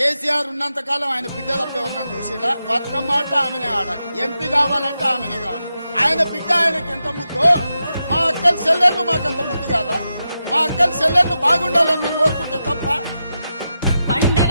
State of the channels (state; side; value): inverted; both; correlation -0.88